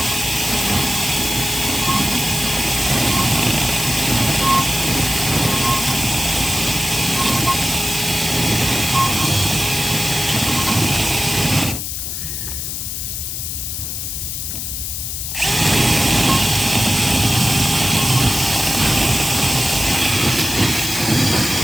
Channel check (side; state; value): left; noise; hiss, 4 dB below the sound